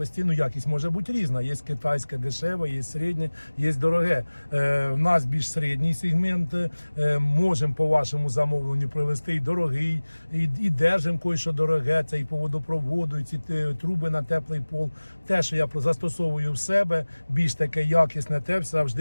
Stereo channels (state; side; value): inverted; both; correlation -1.00